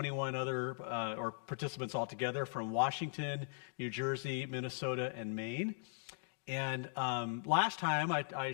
other participants altogether from Washington, New Jersey, Minnesota, and Maine. And last time I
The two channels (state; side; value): silent; right; digital silence